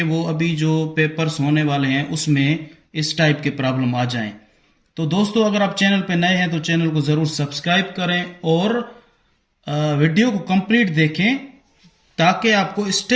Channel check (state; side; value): identical; both; correlation 1.00